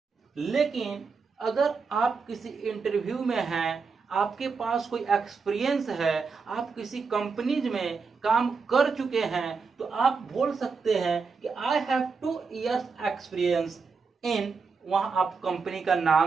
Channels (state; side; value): quieter; left; 5.0 dB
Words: लेकिन अगर आप किसी इंटरव्यू में हैं, आपके पास कोई एक्सपीरियंस है, आप किसी कंपनीज में काम कर चुके हैं, तो आप बोल सकते हैं कि I have 2 years experience in, वहां आप कंपनी का